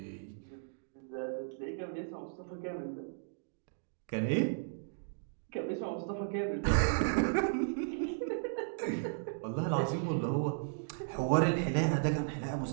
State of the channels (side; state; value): left; silent; digital silence